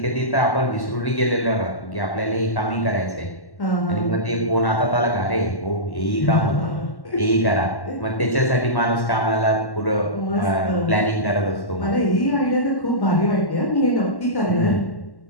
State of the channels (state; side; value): late; right; 1.1 ms